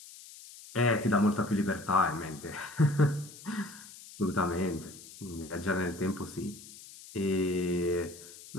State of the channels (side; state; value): left; noise; hiss, 17 dB below the sound